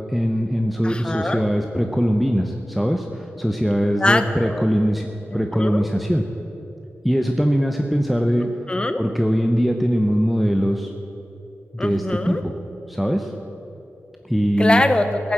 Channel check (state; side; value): normal; both; correlation 0.96